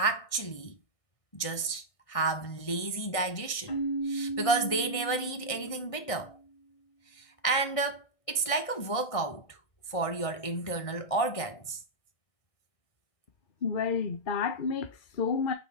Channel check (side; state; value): right; late; 1.6 ms